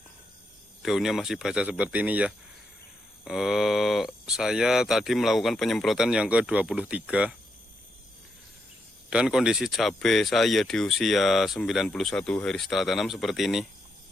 Daunnya masih basah seperti ini ya. Saya tadi melakukan penyemprotan yang ke-23. Dan kondisi cabai saya di usia 91 hari setelah tanam seperti ini.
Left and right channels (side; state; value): both; normal; correlation 0.81